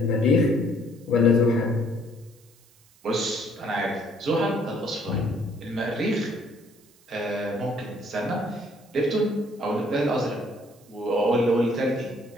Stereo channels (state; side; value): noise; right; hiss, 29 dB below the sound